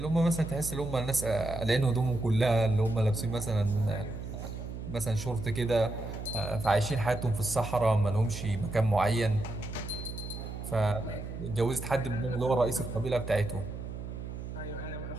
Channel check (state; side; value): noise; right; hum, 8 dB below the sound